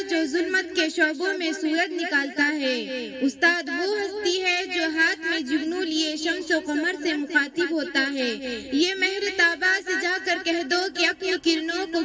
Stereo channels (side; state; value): both; identical; correlation 1.00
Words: जो जुल्मत के शोबों में सूरज निकालता है, उस्ताद वो हस्ती है जो हाथ में जुगनू लिए शम्सो कमर से मुखातिब होता है। ये महर ताबा से जाकर कह दो कि अपनी किरणों को